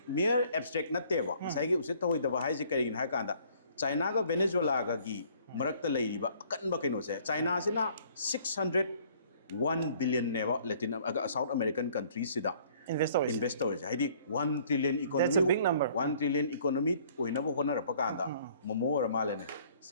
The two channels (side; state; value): both; inverted; correlation -0.58